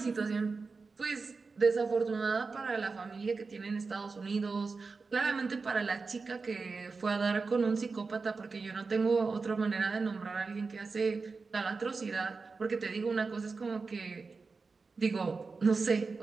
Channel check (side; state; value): left; quieter; 4.4 dB